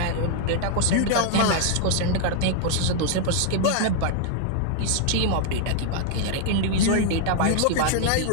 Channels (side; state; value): both; different; correlation 0.00